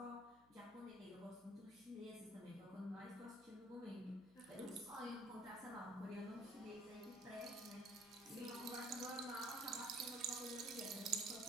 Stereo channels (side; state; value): left; noise; hum, 26 dB below the sound